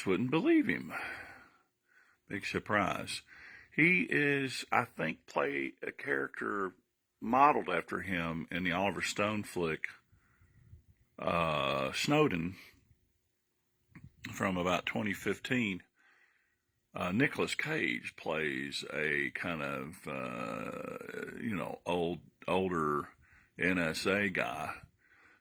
wouldn't believe him. Big surprise. He is, I think, play a character modeled after him in the Oliver Stone flick, Snowden, from about 2015. Nicolas Cage plays a kind of, older NSA guy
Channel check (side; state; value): both; identical; correlation 1.00